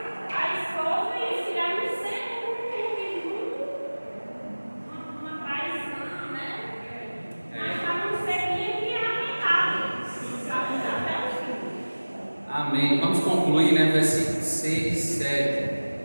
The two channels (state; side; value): inverted; both; correlation -1.00